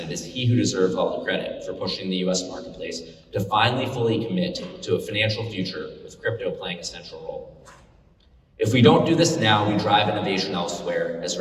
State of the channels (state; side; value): identical; both; correlation 1.00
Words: it is he who deserves all the credit for pushing the US marketplace to finally fully commit to a financial future with crypto playing a central role. If we don't do this now, we drive innovation elsewhere, as